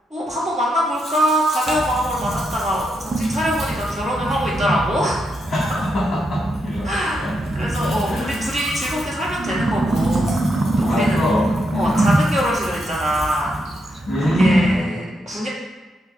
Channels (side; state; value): both; normal; correlation 0.81